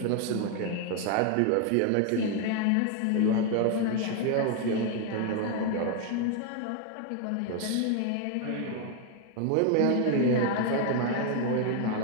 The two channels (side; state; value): both; different; correlation 0.01